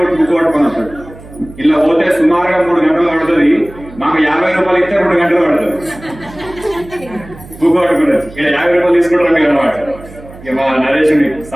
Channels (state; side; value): noise; right; hum, 18 dB below the sound